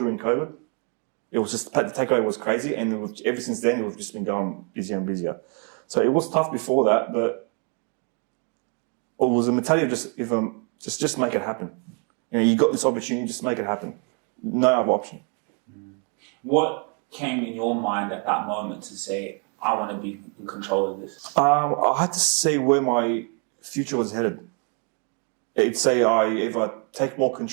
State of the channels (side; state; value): left; quieter; 38.8 dB